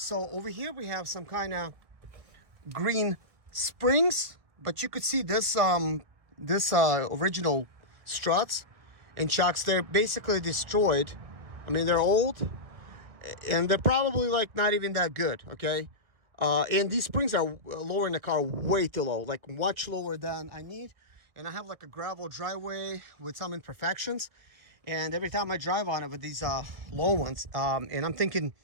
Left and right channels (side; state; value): left; late; 1.6 ms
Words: over here we have some kind of green springs, but you could see this original struts and shocks. They're basically destroyed. I mean, they're old and they're probably like not even that good, okay? And these springs are lowering the car way too low, like much lower than I need. And I have like a gravel driveway with some imperfections, and every time I drive on it with these low ones, and I'm thinking